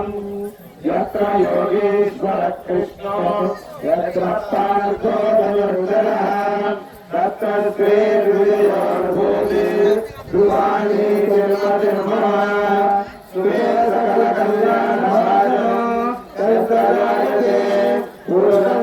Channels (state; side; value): identical; both; correlation 1.00